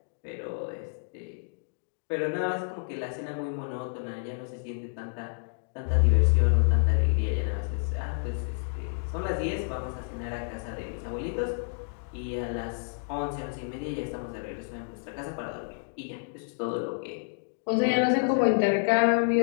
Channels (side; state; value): right; silent; digital silence